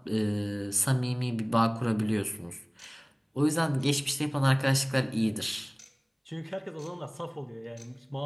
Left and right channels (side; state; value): both; identical; correlation 1.00